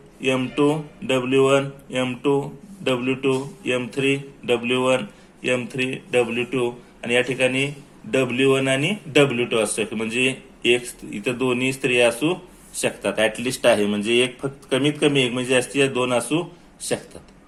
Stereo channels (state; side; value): identical; both; correlation 1.00